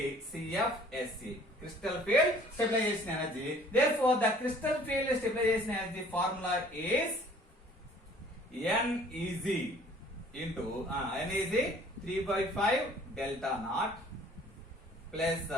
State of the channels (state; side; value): normal; both; correlation 0.54